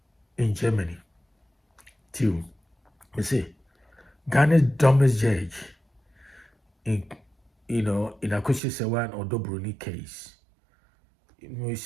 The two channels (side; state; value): left; drops out; at 8.6 s